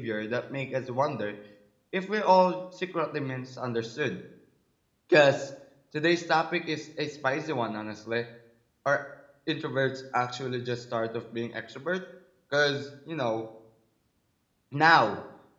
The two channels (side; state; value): both; identical; correlation 1.00